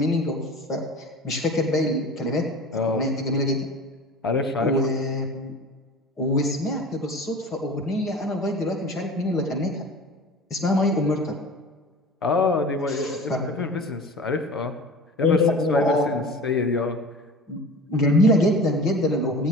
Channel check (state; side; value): normal; both; correlation 0.38